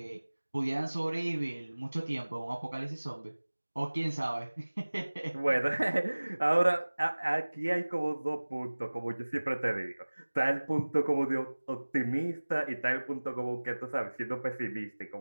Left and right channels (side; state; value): both; inverted; correlation -1.00